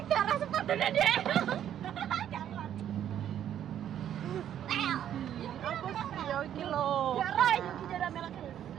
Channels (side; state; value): left; quieter; 10.4 dB